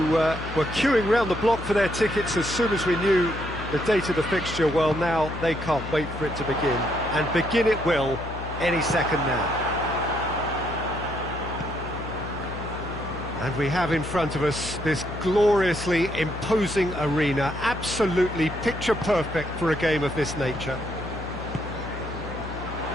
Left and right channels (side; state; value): left; noise; hum, 9 dB below the sound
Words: were queuing round the block for their tickets as soon as we knew the date of the fixture, well, now they can't wait for it to begin. And begin it will any second now. And we have in front of us this gloriously imposing arena, absolutely picture perfect for a game of this nature.